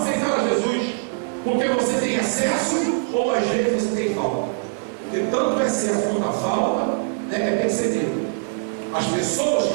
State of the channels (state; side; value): silent; left; 64 dB below the other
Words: Jesus. Porque você tem excesso ou às vezes você tem falta. E tanto o excesso quanto a falta é percebido. As pessoas